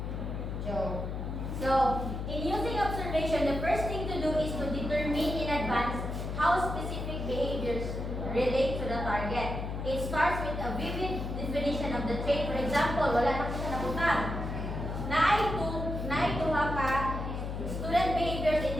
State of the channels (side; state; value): left; noise; hum, 4 dB below the sound